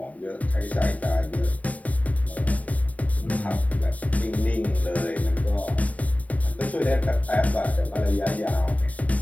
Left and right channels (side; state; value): right; late; 0.070 ms